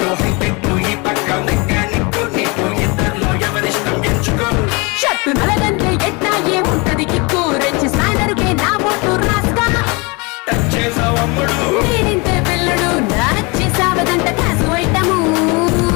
హైటెక్ ఈ పక్క మెకానిక్ నీకు ఇద్దరిలో ఎవరిష్టం ఎంచుకో. షర్టు నలగంటే ఎట్టా ఏముంటది కిక్కు. రెచ్చి స్నానరుకే నా ఓటు రాస్తా. టచ్ చేసావు అమ్ముడు నేనింతే పిల్లడు నచ్చి సావదంట కాసు ఐటము.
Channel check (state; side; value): quieter; right; 28.2 dB